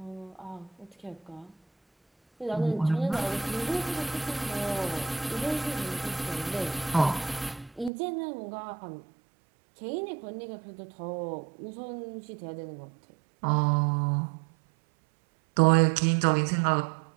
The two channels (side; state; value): left; drops out; at 7.9 s